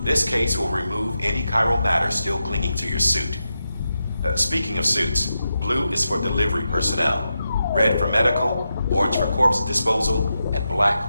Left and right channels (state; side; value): inverted; both; correlation -0.88